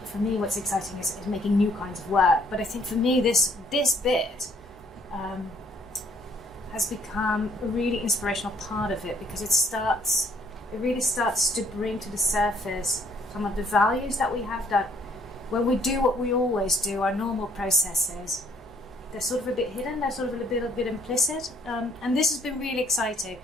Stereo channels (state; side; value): normal; both; correlation 0.64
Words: for me, what's exciting is making new kinds of work. But I think for me, this bit has become a really inspirational part of it, because it really starts to bring to the surface some of the values that we have, that when we do what we always do, our normal processes, they're sort of a bit hidden, they're sort of a bit implicit. And this has been really exciting.